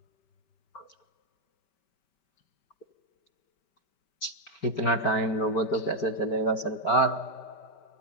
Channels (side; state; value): right; late; 5.2 ms